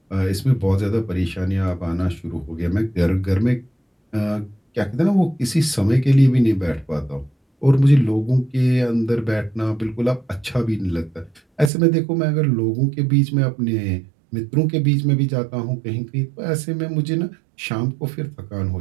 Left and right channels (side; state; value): left; drops out; at 11.7 s